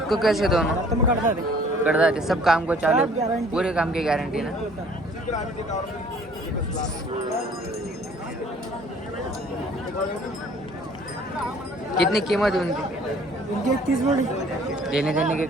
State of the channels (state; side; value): normal; both; correlation 0.55